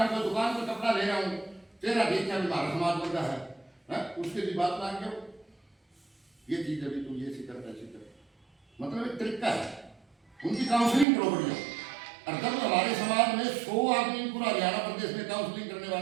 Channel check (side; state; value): left; drops out; at 11.1 s